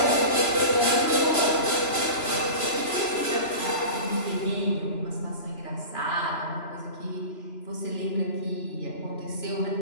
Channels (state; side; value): late; right; 3.0 ms